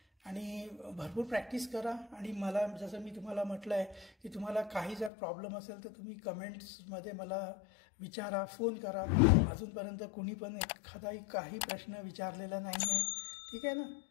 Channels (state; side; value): drops out; right; at 5.1 s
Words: आणि भरपूर प्रॅक्टिस करा. आणि मला जसं मी तुम्हाला म्हटलं आहे की तुम्हाला काही जर प्रॉब्लेम असेल तर तुम्ही कमेंट्समध्ये मला विचारा, फोन करा. अजूनपर्यंत कुणी पण एखादाही काही प्रश्न विचारलेला नाही आहे, ठीक आहे ना.